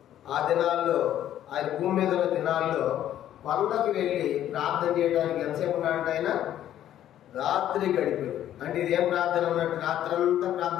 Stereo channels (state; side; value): quieter; right; 11.6 dB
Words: ఆ దినాల్లో, ఆయన భూమి మీద ఉన్న దినాల్లో కొండకు వెళ్ళి ప్రార్థన చేయడానికి ఎంతసేపు ఉన్నాడంటే ఆయన రాత్రి గడిపారు. అంటే ఇది ఏం ప్రార్థన ఉన్నట్టు? రాత్రంతా